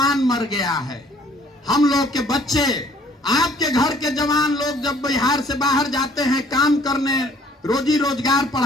मर गया है। हम लोग के बच्चे, आपके घर के जवान लोग जब बिहार से बाहर जाते हैं काम करने, रोजी रोजगार,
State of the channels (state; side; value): normal; both; correlation 0.58